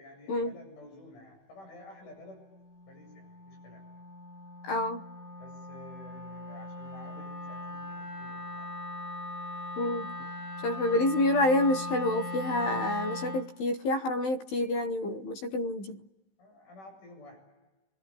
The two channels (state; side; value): late; right; 16 ms